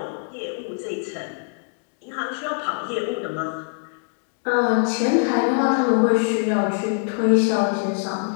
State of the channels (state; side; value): silent; right; digital silence